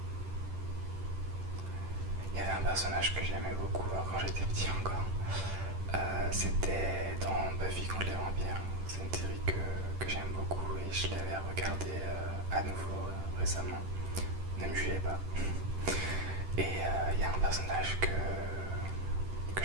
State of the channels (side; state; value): left; late; 10 ms